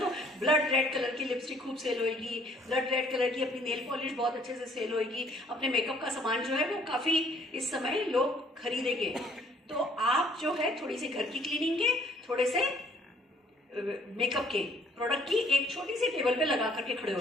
ब्लड रेड कलर की लिपस्टिक खूब सेल होएगी, ब्लड रेड कलर की अपनी नेल पॉलिश बहुत अच्छे से सेल होएगी, अपने मेकअप का सामान जो है वो काफी इस समय लोग खरीदेंगे। तो आप जो है थोड़ी सी घर की क्लीनिंग के, थोड़े से मेकअप के प्रोडक्ट की एक छोटी सी टेबल पे लगा करके खड़े हो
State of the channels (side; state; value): both; normal; correlation 0.60